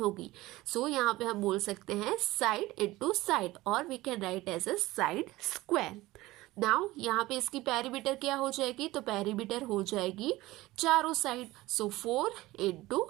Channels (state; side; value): quieter; left; 18.5 dB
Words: सो यहाँ पे हम बोल सकते हैं साइड इंटू साइड, और we can write as a side square. Now यहाँ पे इसकी पेरीमीटर क्या हो जाएगी? तो पेरीमीटर हो जाएगी चारों side, so 4 into